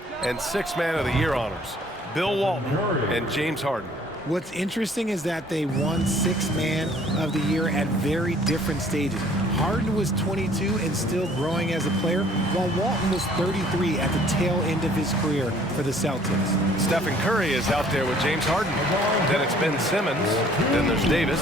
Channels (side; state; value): both; normal; correlation 0.57